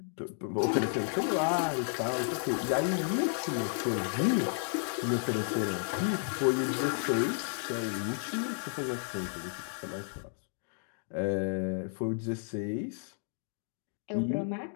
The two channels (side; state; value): right; silent; 56 dB below the other